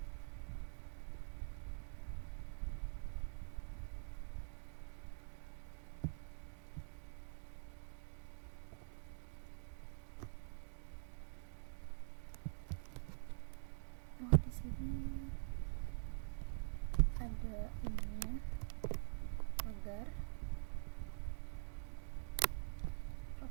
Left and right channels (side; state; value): left; silent; digital silence